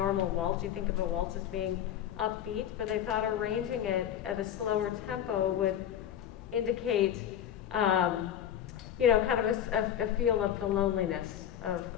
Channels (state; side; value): quieter; right; 10.2 dB